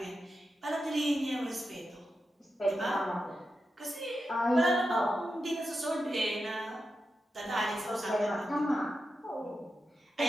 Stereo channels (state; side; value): normal; both; correlation 0.89